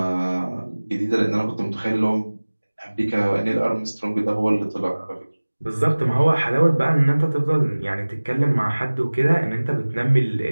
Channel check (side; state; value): both; inverted; correlation -1.00